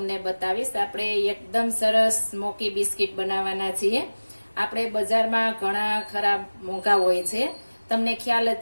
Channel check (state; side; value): inverted; both; correlation -1.00